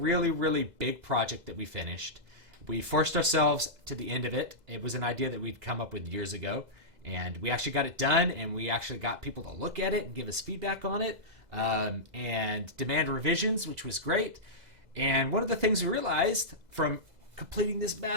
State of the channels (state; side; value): late; left; 2.0 ms